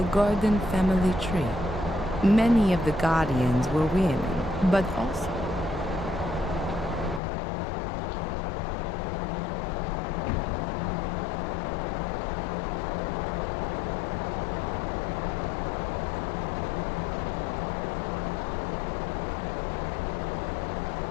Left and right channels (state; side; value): drops out; right; at 7.2 s